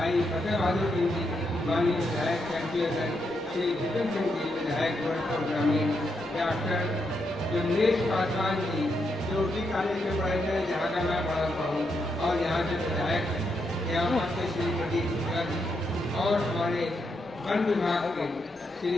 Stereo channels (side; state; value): both; normal; correlation 0.81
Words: फतेह बहादुर सिंह जी, माननीय विधायक कैंपियर श्री जितेंद्र सिंह जी, विधायक गोरखपुर ग्रामीण, डॉक्टर जमनेश पासवान जी जो उसी कॉलेज में पढ़े थे जहाँ का मैं पढ़ा हुआ हूँ और यहाँ के विधायक हैं, यहाँ से श्री प्रदीप शुक्ला जी और हमारे वन विभाग के श्री